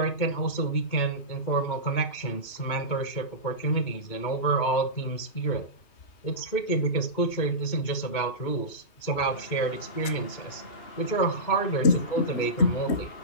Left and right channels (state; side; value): late; right; 2.2 ms